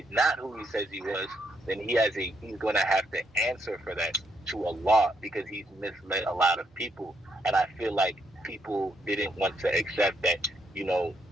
not who he says he was, then he's going to have to answer for that to Allah because he's misled a lot of people. And I feel like people didn't want to accept that,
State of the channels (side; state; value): both; normal; correlation 0.76